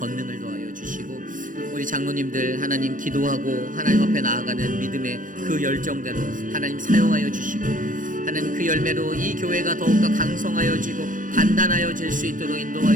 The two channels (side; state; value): left; late; 0.38 ms